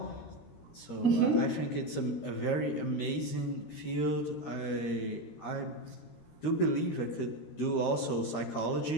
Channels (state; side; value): late; right; 13 ms